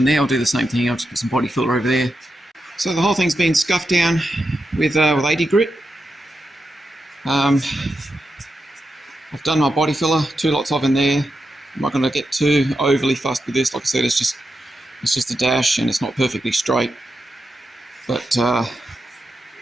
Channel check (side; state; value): both; normal; correlation 0.87